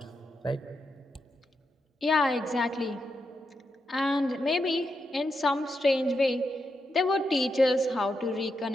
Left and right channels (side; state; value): both; normal; correlation 0.85